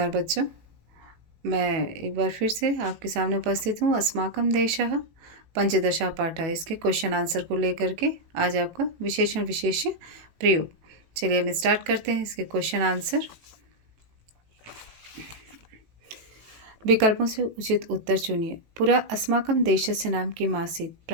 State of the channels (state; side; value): late; left; 18 ms